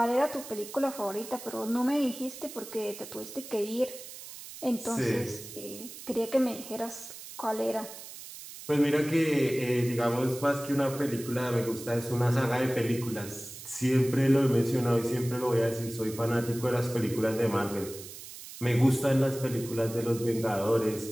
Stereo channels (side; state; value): right; noise; hiss, 13 dB below the sound